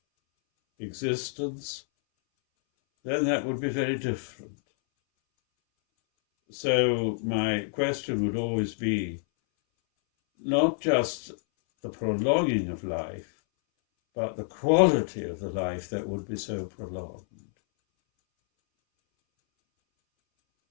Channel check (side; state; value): right; silent; 59 dB below the other